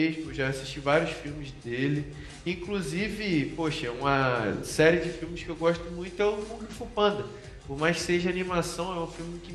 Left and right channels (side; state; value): both; identical; correlation 1.00